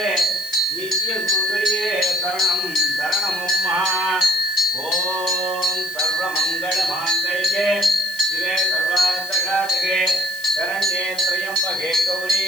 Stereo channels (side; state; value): left; noise; hiss, 15 dB below the sound